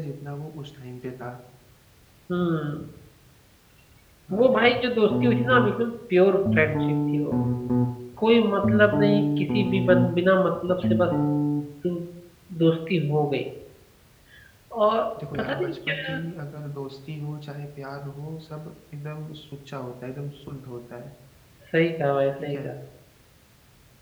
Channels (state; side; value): identical; both; correlation 1.00